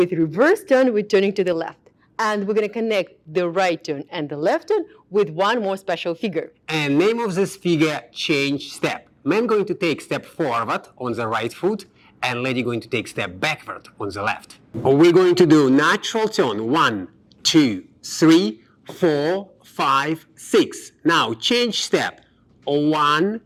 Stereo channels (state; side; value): identical; both; correlation 1.00